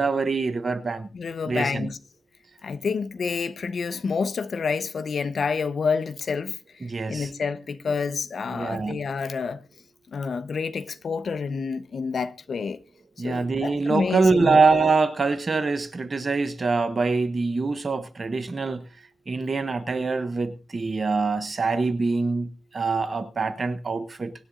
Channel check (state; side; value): normal; both; correlation 0.88